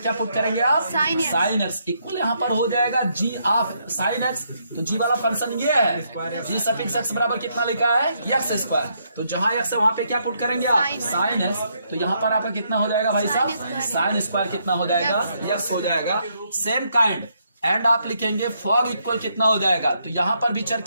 पुट करेंगे आप साइन एक्स इक्वल यहाँ पर हो जाएगा जी ऑफ साइन एक्स। तो जी वाला फंक्शन ये है जी सफिक्स एक्स बराबर कितना लिखा है एक्स स्क्वायर। तो जहां एक्स है वहां पे क्या पुट करेंगे आप साइन एक्स। तो यहाँ पर आपका कितना हो जाएगा भाई साहब साइन स्क्वायर कितना हो जाएगा एक्स हो जाएगा। सेम काइंड एंड आप लिखेंगे फॉग इक्वल कितना हो जाएगा। तो यहाँ पर भी चर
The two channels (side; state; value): both; inverted; correlation -0.75